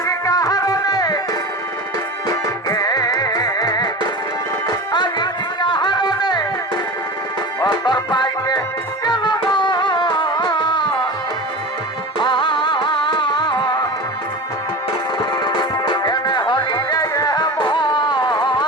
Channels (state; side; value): normal; both; correlation 0.30